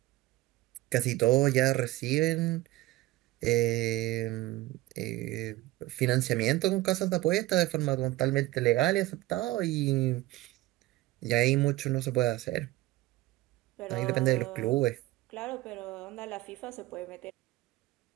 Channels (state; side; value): quieter; left; 18.1 dB